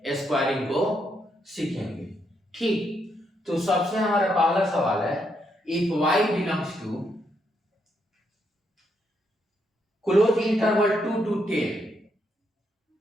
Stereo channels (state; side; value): normal; both; correlation 0.78